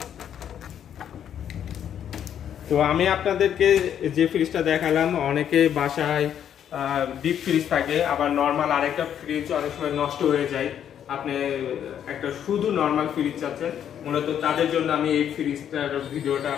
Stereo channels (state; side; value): quieter; right; 9.4 dB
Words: তো আমি আপনাদেরকে যে ফ্রিজটা দেখালাম, অনেকে বাসায় ডিপ ফ্রিজ থাকে, আবার নর্মাল আরেকটা ফ্রিজ অনেক সময় নষ্ট হয়ে যায়, আপনি একটা শুধু নর্মাল ফ্রিজ চাচ্ছেন, মূলত তাদের জন্য আমি এই ফ্রিজটার ভিডিওটা